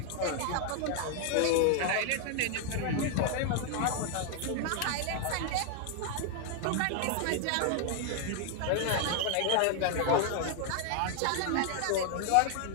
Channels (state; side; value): different; both; correlation 0.00